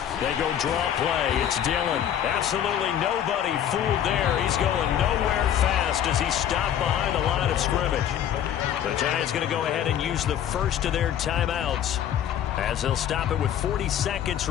They go draw play. It's Dillon. Absolutely nobody fooled there. He's going nowhere fast as he stopped behind the line of scrimmage. The Giants going to go ahead and use the first of their timeouts as they'll stop it with 40 seconds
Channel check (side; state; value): right; quieter; 10.1 dB